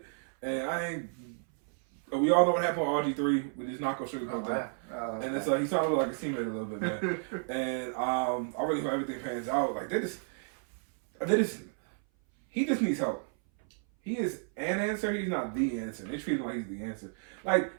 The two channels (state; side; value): silent; left; 57 dB below the other